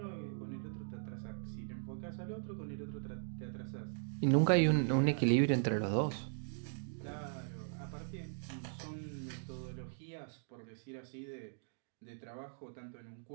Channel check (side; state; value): left; silent; digital silence